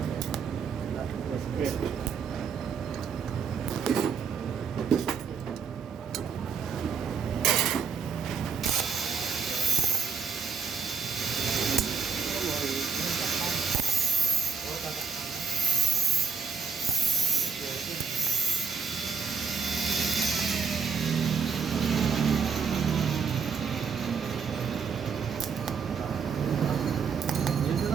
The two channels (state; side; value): quieter; left; 6.1 dB